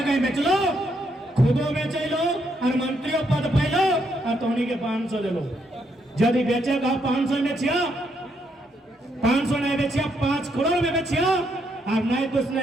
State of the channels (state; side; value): normal; both; correlation 0.76